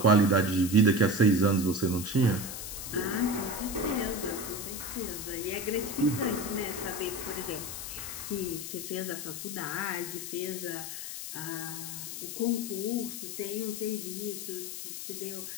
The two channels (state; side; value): noise; left; hiss, 7 dB below the sound